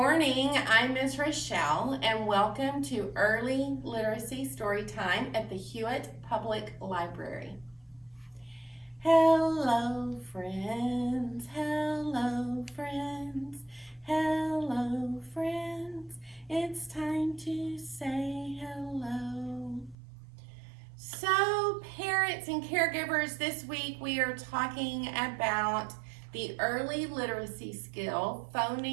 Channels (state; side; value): drops out; left; at 20.0 s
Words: I'm Ms. Rochelle, and welcome to Early Literacy Storytime at the Hewitt Public Library. Hello, friends, hello, friends, hello, friends. It's time to say hello. So, parents and caregivers, this week we are talking about the early literacy skill,